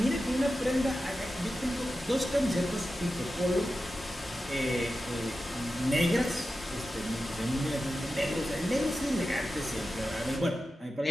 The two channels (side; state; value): both; normal; correlation 0.92